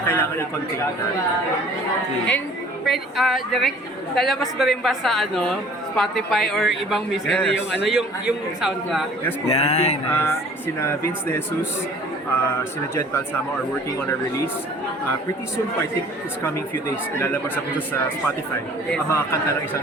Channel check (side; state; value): both; normal; correlation 0.51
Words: kailangan i-contain natin. And direct, lalabas ba rin ba sa Spotify or ibang music Yes. yung soundtrack? Yes po. Yan, I think nice. sina Vince De Jesus, sina Jed Balsamo are working on a release. Pretty soon po, I think it's coming few days. Ilalabas ako sa Spotify ang mga kanta ng isang